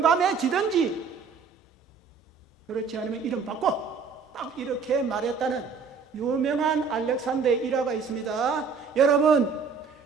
그렇지 않으면 이름 바꿔 딱 이렇게 말했다는 유명한 알렉산더의 일화가 있습니다. 여러분,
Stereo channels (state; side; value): quieter; left; 5.4 dB